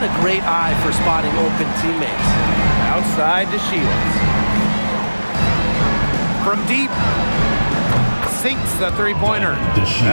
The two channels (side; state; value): both; inverted; correlation -1.00